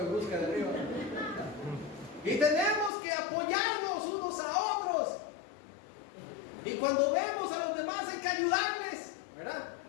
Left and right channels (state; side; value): drops out; right; at 2.9 s